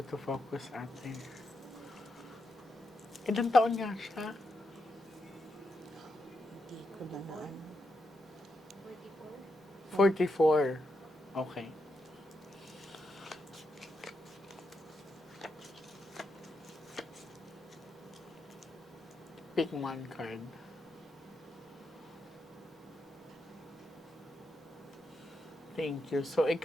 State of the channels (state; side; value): normal; both; correlation 0.84